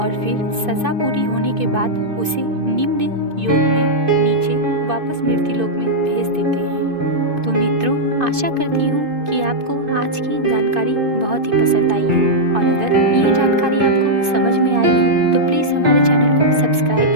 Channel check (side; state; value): left; late; 2.5 ms